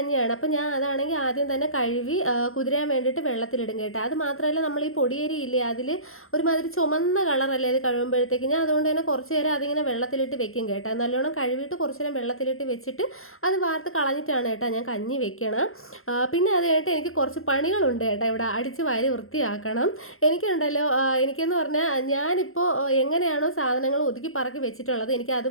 അപ്പോൾ ഞാൻ അതാണെങ്കിൽ ആദ്യം തന്നെ കഴുകി കുതിരാൻ വേണ്ടിയിട്ട് വെള്ളത്തിലിടും കേട്ടോ. അത് മാത്രമല്ല, നമ്മൾ ഈ പൊടിയരി ഇല്ലേ, അതിൽ ഒരുമാതിരി ചുമന്ന കളറല്ലേ അത് കഴുകുമ്പോഴത്തേക്ക്. ഞാൻ അതുകൊണ്ട് തന്നെ കുറച്ച് നേരം അതിങ്ങനെ വെള്ളത്തിലിട്ട് വെക്കും കേട്ടോ. നല്ലോണം കഴുകിയിട്ട് കുറച്ച് നേരം വെള്ളത്തിലിട്ട് വെച്ചിട്ട് അത് വാർത്ത് കളഞ്ഞിട്ടാണ് കേട്ടോ ഞാൻ കഞ്ഞി വെക്കണം. പിന്നെ അത് കഴിഞ്ഞിട്ട് എനിക്ക് കുറച്ച് പണികളുണ്ട് കേട്ടോ. ഇവിടെ അടിച്ച് വാരി വൃത്തിയാക്കണം. എനിക്കുണ്ടല്ലോ, എനിക്കെന്ന് പറഞ്ഞാൽ ഞാനിപ്പോൾ എങ്ങനെയാണോ സാധനങ്ങൾ ഒതുക്കി പറക്കി വെച്ചിട്ടുള്ളത്, എനിക്ക്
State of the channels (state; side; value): late; right; 0.61 ms